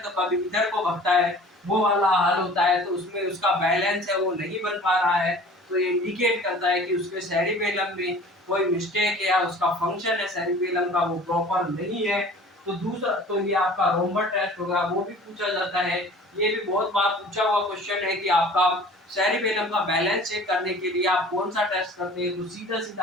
कभी इधर को भगता है, वो वाला हाल होता है। तो उसमें उसका बैलेंस है वो नहीं बन पा रहा है, तो ये इंडिकेट करता है कि उसके सेरिबेलम में कोई मिस्टेक है या उसका फंक्शन है सेरिबेलम का वो प्रॉपर नहीं है। तो दूसरा तो ये आपका रोमबर्ग टेस्ट होगा, वो भी पूछा जाता है। ये भी बहुत बार पूछा हुआ क्वेश्चन है कि आपका सेरिबेलम का बैलेंस चेक करने के लिए आप कौन सा टेस्ट करते हैं, तो सीधा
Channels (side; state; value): both; normal; correlation 0.45